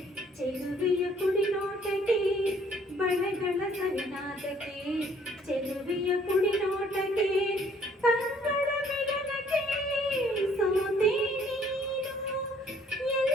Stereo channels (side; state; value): both; normal; correlation 0.60